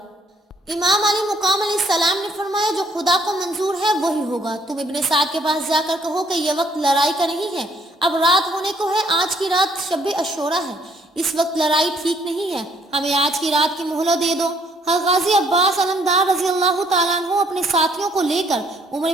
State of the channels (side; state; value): both; normal; correlation 0.65